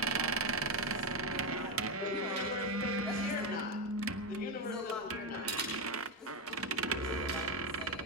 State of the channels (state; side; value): normal; both; correlation 0.09